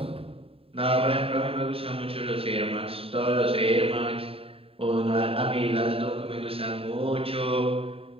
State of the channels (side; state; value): left; late; 0.27 ms